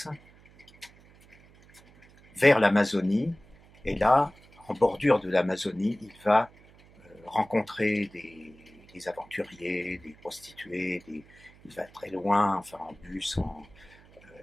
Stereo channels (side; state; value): right; noise; hum, 26 dB below the sound